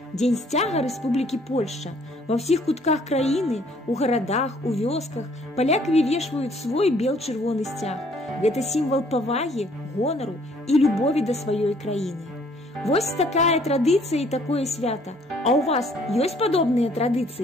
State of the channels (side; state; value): both; normal; correlation 0.61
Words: дзень сцяга Рэспублікі Польшча. Ва ўсіх кутках краіны, у гарадах, у вёсках палякі вывешваюць свой бел-чырвоны сцяг. Гэта сімвал павагі, гонару і любові да сваёй краіны. Вось такая традыцыя і такое свята. А ў вас ёсць падобныя